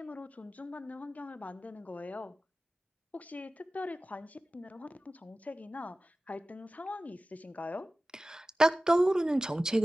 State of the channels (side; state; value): both; normal; correlation 0.96